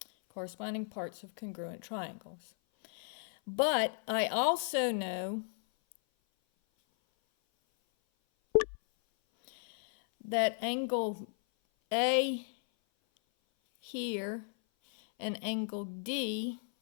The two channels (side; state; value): right; silent; 55 dB below the other